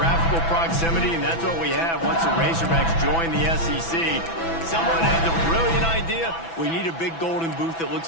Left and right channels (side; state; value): right; late; 6.0 ms